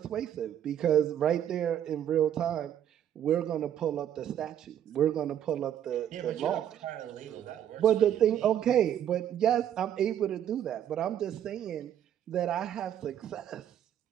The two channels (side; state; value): left; quieter; 10.2 dB